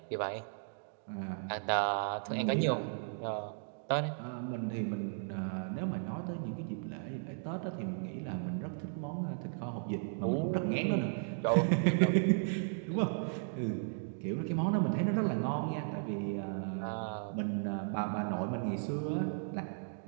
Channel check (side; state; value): left; silent; digital silence